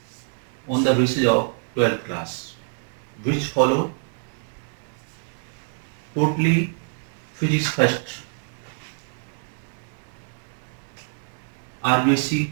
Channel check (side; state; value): left; silent; 61 dB below the other